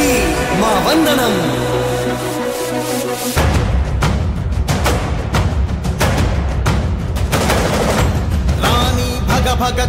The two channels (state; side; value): identical; both; correlation 1.00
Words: మా వందనం. భగ